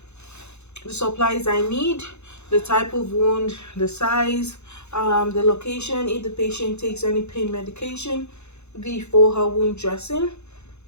the supplies I need, the type of wound, the size, the location, if the patient takes any pain medication before her wound dressing,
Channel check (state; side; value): late; right; 0.81 ms